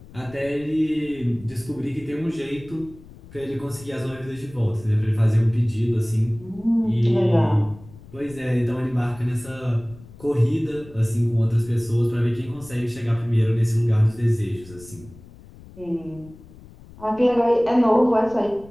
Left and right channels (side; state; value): left; noise; rumble, 20 dB below the sound